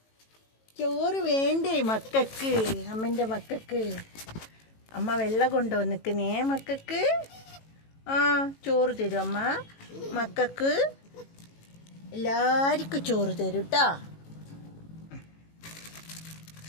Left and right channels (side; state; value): right; late; 18 ms